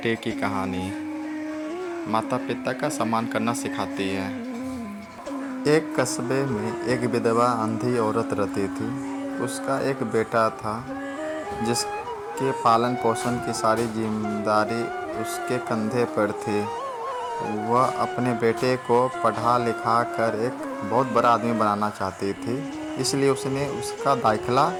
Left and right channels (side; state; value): both; identical; correlation 1.00